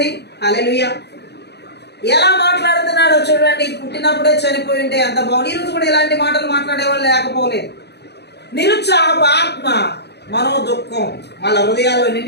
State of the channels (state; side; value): late; right; 0.49 ms